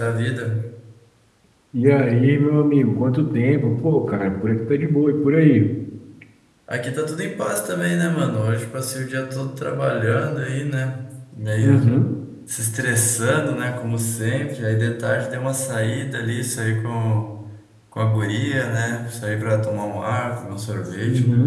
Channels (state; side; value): identical; both; correlation 1.00